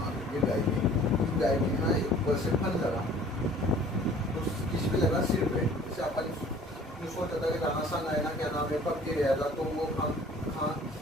लो ये गाय है, इस गाय में ना ऊपर से फन लगा, तो किस पे लगा? सिर पे। जैसे अपन सोचा था कि राणा सन आया ना, क्या नाम है, पक्के गया था, तो वो हाँ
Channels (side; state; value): both; normal; correlation 0.51